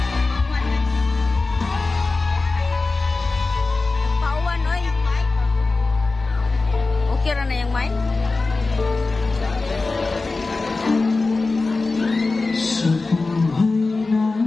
Kira na yung mic? Sa buhay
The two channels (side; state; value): right; quieter; 3.6 dB